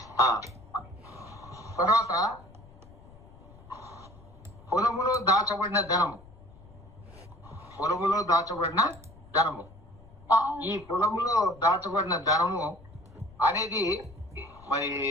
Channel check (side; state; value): left; noise; rumble, 22 dB below the sound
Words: తర్వాత పొలములో దాచబడిన ధనము. పొలములో దాచబడిన ధనము. ఈ పొలములో దాచబడిన ధనము అనేది మరి